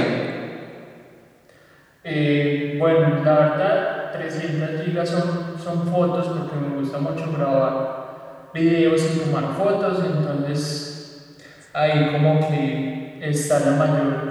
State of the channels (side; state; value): both; identical; correlation 1.00